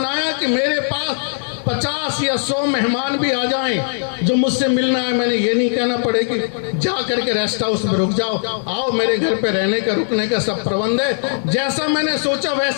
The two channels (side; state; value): right; silent; digital silence